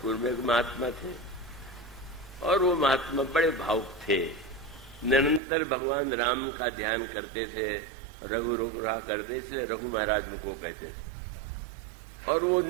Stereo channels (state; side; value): drops out; left; at 5.4 s